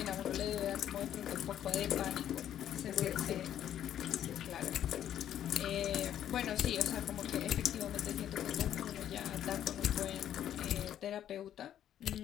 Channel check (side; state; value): right; quieter; 10.7 dB